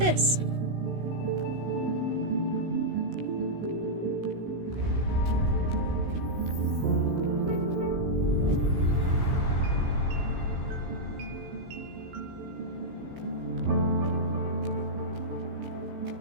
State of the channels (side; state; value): left; late; 16 ms